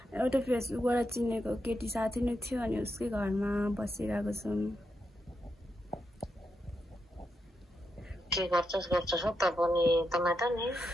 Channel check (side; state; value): both; normal; correlation 0.84